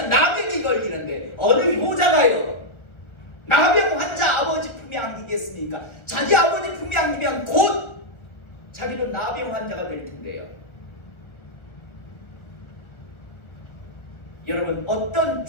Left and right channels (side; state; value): right; late; 1.4 ms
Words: 나병이 걸리는데 어느 효자가요 나병 환자 아버지 품에 안기겠습니까? 자기 아버지 품에 안기면 곧 자기는 나병 환자가 될 텐데요. 여러분 어떤